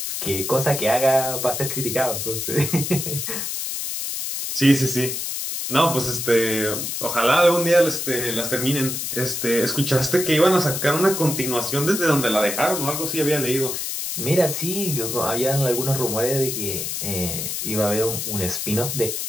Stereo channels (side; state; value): left; noise; hiss, 3 dB below the sound